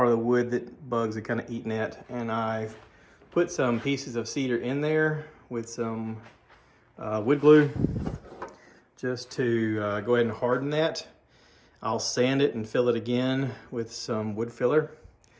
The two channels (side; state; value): both; identical; correlation 1.00